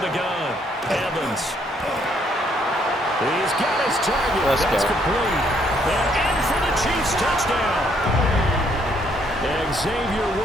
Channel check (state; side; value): normal; both; correlation 0.69